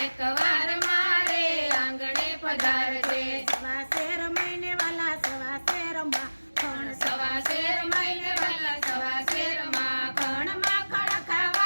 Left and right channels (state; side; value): inverted; both; correlation -1.00